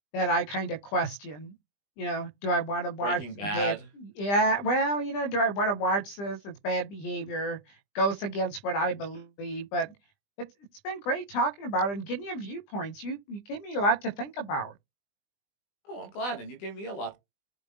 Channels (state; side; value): late; right; 20 ms